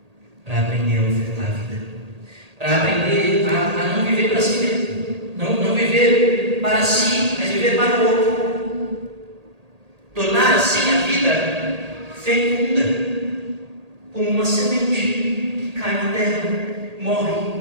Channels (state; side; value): late; left; 1.8 ms